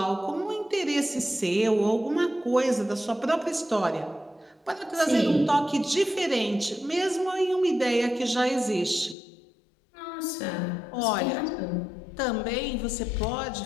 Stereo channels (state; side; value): drops out; right; at 9.2 s